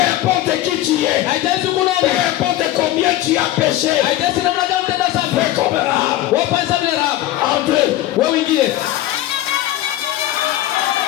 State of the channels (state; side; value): quieter; right; 14.4 dB